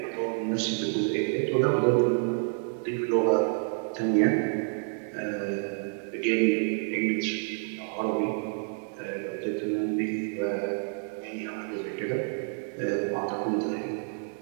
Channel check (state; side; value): silent; left; 59 dB below the other